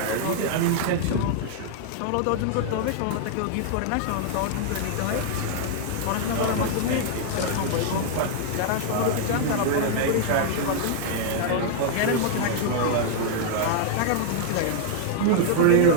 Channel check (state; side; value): different; both; correlation -0.01